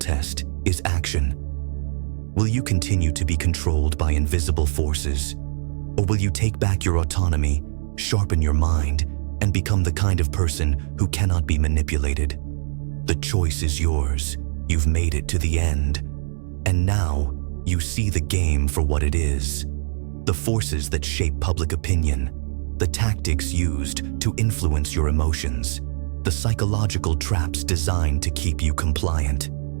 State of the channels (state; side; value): silent; left; digital silence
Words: is action. Will you continue to be controlled by invisible forces? Or will you take back your autonomy, sharpen your mind, and become the kind of person who cannot be manipulated? The choice is yours. You've made it to the end. And now, you see the game for what it is. The forces that shape public opinion, the tactics used to influence your emotions, the psychological traps designed to keep you compliant.